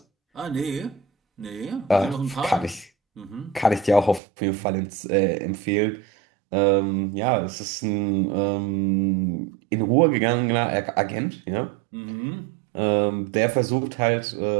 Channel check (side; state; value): left; drops out; at 4.2 s